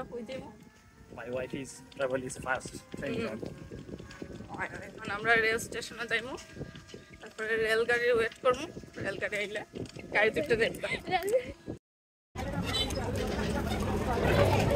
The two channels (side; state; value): both; identical; correlation 1.00